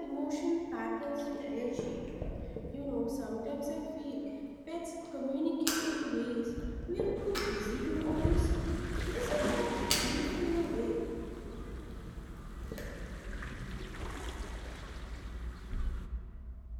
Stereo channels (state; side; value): identical; both; correlation 1.00